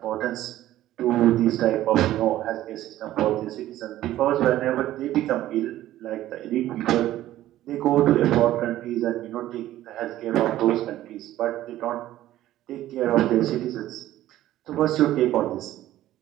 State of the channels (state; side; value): quieter; left; 14.1 dB